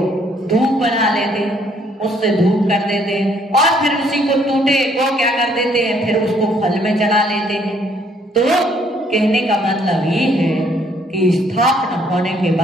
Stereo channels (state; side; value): normal; both; correlation 0.66